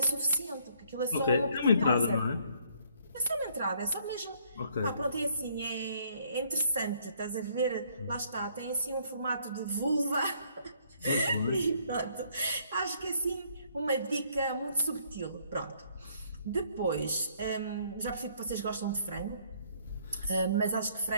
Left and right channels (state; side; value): inverted; both; correlation -0.65